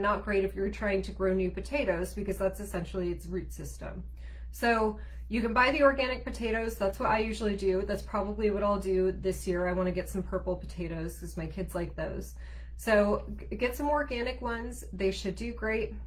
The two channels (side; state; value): both; identical; correlation 1.00